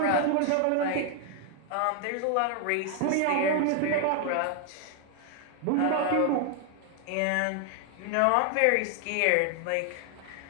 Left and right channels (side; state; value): both; different; correlation 0.00